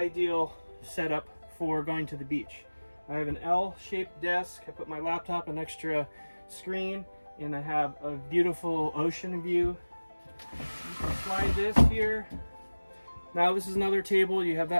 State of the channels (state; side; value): inverted; both; correlation -1.00